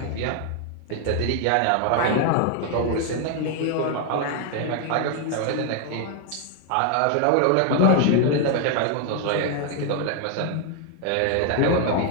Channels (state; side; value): different; both; correlation 0.00